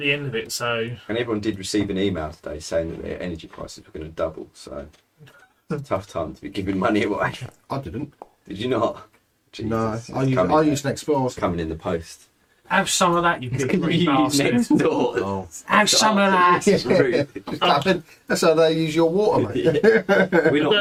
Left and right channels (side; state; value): both; identical; correlation 1.00